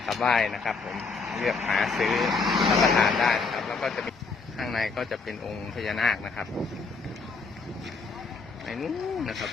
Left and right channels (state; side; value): quieter; right; 4.4 dB